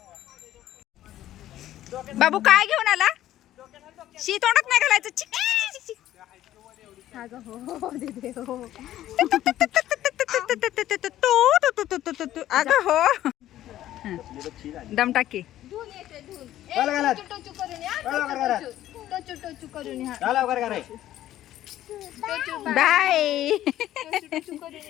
बाबू काय घेऊन आला? शी तोंडात नाही घालायचं. चिक, चिक, चिक, चिक. अगं हो. दम टाकी. Bye bye.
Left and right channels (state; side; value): quieter; right; 13.2 dB